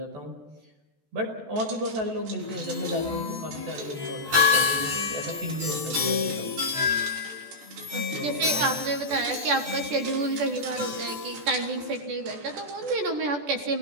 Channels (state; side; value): late; left; 14 ms